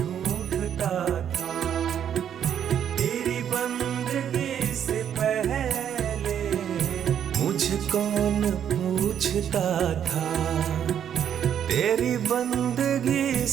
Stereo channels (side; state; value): left; quieter; 9.1 dB